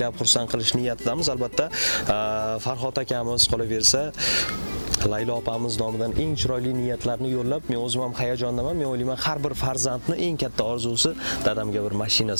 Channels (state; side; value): inverted; both; correlation -1.00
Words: xursand qilish niyatidamiz. Albatta, Farhod akamiz qolaversa Laylo opamiz nomidan eng chiroyli niyatlarni yo'llab, men o'zim ham hayajondaman. Men o'ylayman, har bir farzandni eng katta orzusi dadamga bir mashina